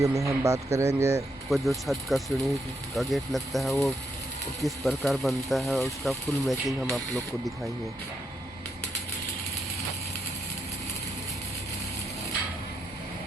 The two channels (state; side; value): normal; both; correlation 0.80